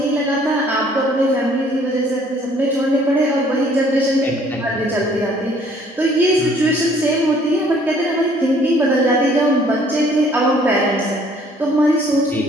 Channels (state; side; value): normal; both; correlation 0.59